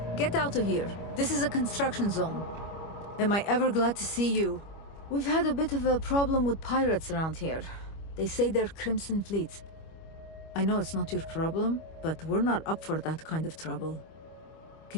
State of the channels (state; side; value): late; right; 25 ms